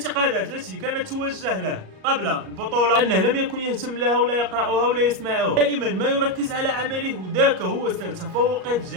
التي كانت توجه له قبل البطوله انه لم يكن يهتم لها ولا يقراها ولا يسمعها، دائما ما يركز على عمله، وذاك هو سر تفوقه في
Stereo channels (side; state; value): left; late; 38 ms